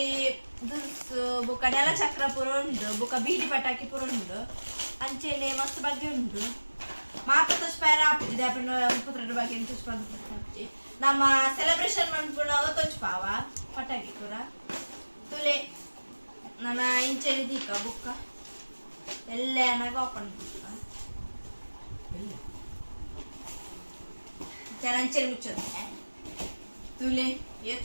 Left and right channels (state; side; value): inverted; both; correlation -1.00